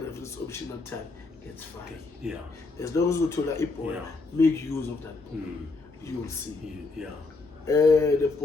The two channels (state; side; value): quieter; right; 3.8 dB